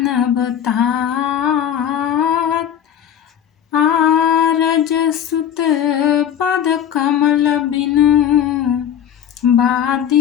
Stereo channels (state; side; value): quieter; right; 9.4 dB